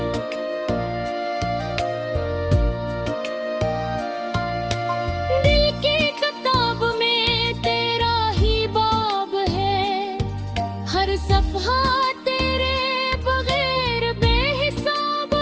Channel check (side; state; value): both; identical; correlation 1.00